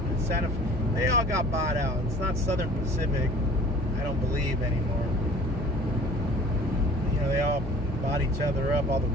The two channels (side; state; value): right; noise; hum, 9 dB below the sound